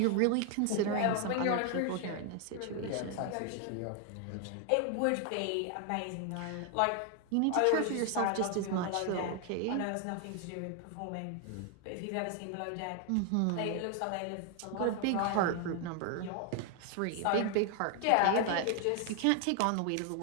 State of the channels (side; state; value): both; different; correlation 0.00